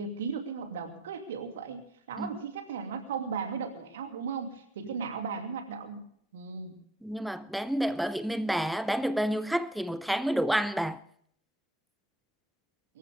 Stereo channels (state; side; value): normal; both; correlation 0.63